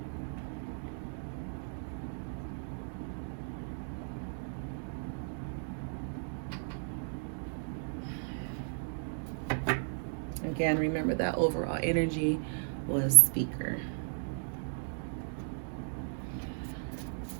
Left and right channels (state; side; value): silent; left; digital silence